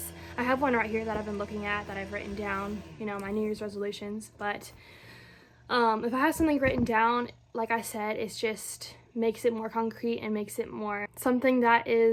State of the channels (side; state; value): both; identical; correlation 1.00